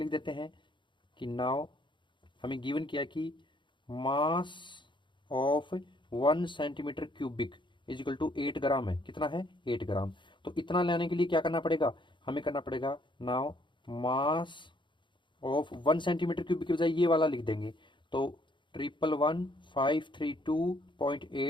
देते हैं कि नाउ हमें गिवन किया कि mass of 1 centimetre cubic is equal to 8 gram है। कितना है, 8 ग्राम। तो इतना लेने के लिए क्या करना पड़ेगा, हमें करना पड़ेगा now mass of 1 centimetre cubic की बजाय ये वाला लिख देंगे। तो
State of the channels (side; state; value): right; late; 0.23 ms